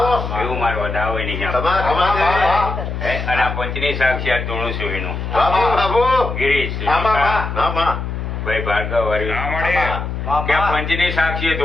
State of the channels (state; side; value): noise; left; hum, 5 dB below the sound